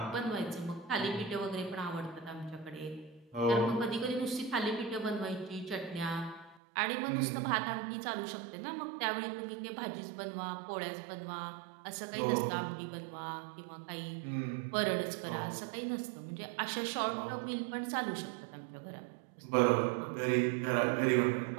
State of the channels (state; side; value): drops out; left; at 6.6 s